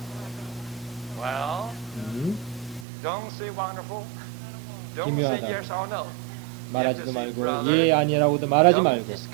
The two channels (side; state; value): left; drops out; at 2.9 s